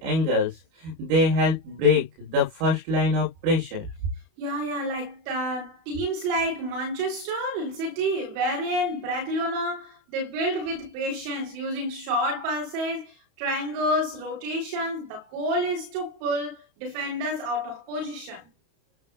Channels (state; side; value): late; left; 31 ms